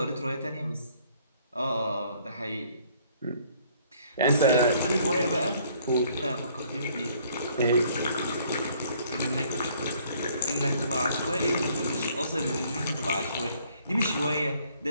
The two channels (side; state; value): both; inverted; correlation -0.62